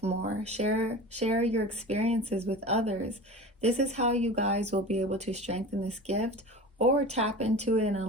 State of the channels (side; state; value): both; normal; correlation 0.33